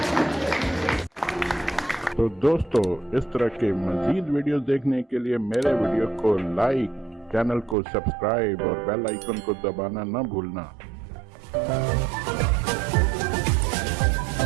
तो दोस्तों, इस तरह के मजीद वीडियोस देखने के लिए मेरे वीडियो को लाइक, चैनल को सब्सक्राइब और बेल आइकन को दबाना न भूलना।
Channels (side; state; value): left; drops out; at 7.8 s